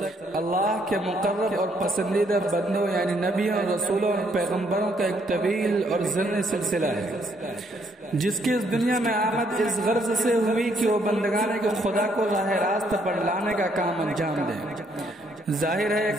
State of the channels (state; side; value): normal; both; correlation 0.70